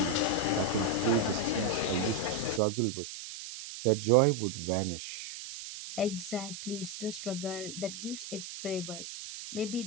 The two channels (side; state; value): right; noise; hiss, 10 dB below the sound